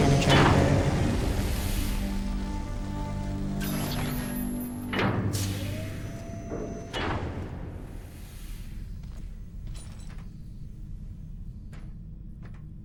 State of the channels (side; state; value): both; identical; correlation 1.00